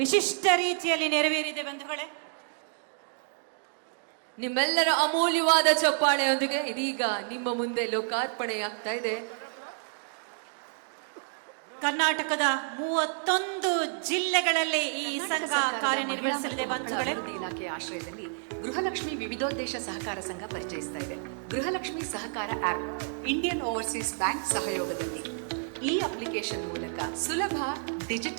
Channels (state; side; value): silent; left; 58 dB below the other